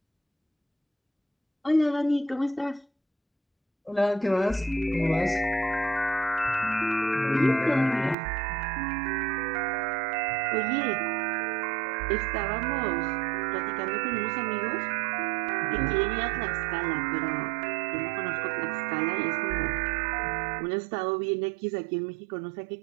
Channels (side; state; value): left; drops out; at 8.2 s